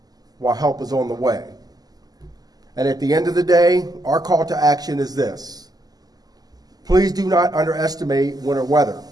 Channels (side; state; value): left; late; 0.18 ms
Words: while help is on the way. And at the end of the day, our call to action is this. Please do not underestimate winter weather,